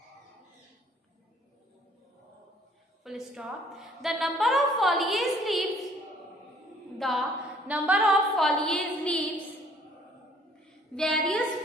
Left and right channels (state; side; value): normal; both; correlation 0.59